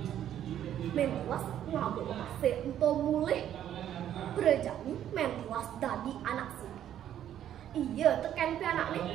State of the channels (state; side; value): quieter; left; 10.8 dB